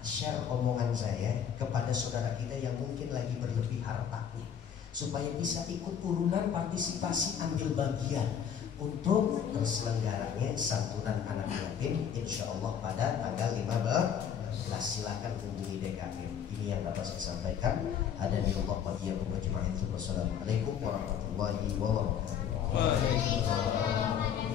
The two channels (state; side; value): quieter; right; 8.3 dB